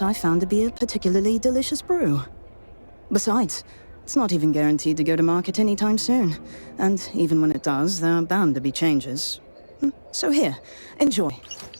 I found to be a particularly delicious brew? Besides, it's not even guaranteed to go to market anytime soon. And even when it does, there are bound to be changes. So here, enjoy.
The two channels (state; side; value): inverted; both; correlation -1.00